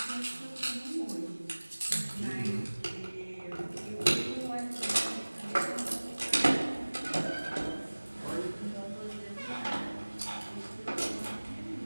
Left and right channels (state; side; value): inverted; both; correlation -1.00